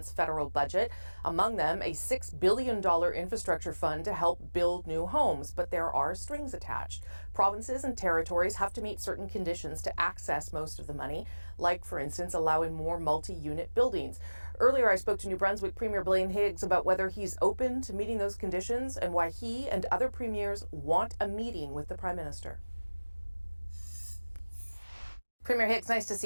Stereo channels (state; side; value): inverted; both; correlation -1.00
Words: federal budget. Among them, a $6 billion infrastructure fund to help build new homes. But there are strings attached. Provinces and territories have to meet certain conditions to access most of the money, like, for instance, allowing more multi-unit buildings. Earlier, I spoke to New Brunswick Premier Blaine Higgs about whether he's open to meeting those conditions and why he and other premiers want a meeting with the Prime Minister. Premier Higgs, nice to see